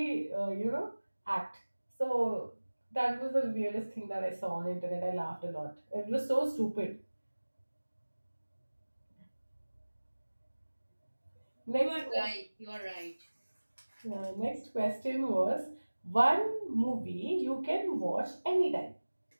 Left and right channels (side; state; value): both; inverted; correlation -1.00